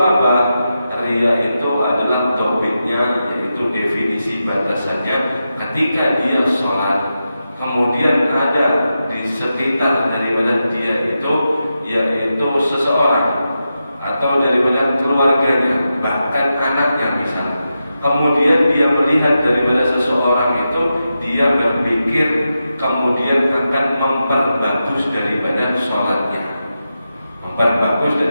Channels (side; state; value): both; inverted; correlation -0.89